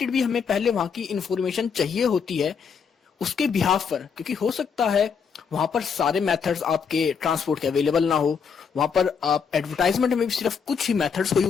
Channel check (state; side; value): quieter; right; 6.3 dB